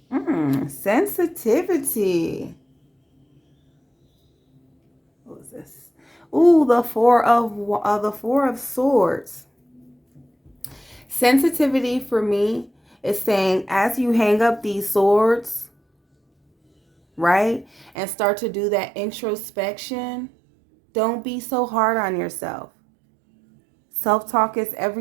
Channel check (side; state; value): left; drops out; at 17.9 s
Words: Sensitivity. What was this? Ooh, the four of swords. Sensitivity for me is saying, as you hang up these swords, right, and start to do that introspection, don't be so hard on yourself. Self-talk is